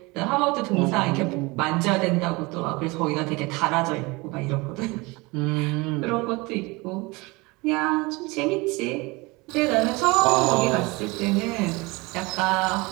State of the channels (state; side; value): quieter; left; 24.7 dB